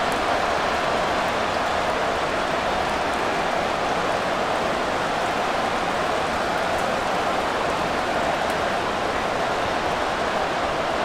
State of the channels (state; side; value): identical; both; correlation 1.00